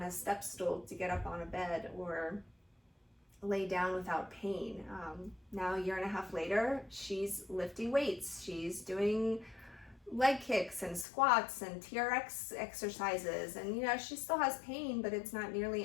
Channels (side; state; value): right; drops out; at 11.1 s